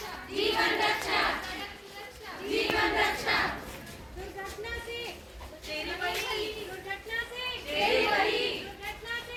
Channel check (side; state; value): both; identical; correlation 1.00